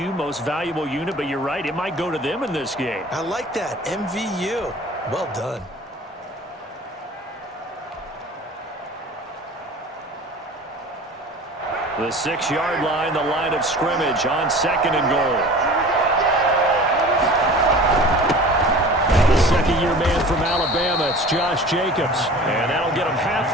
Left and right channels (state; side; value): normal; both; correlation 0.41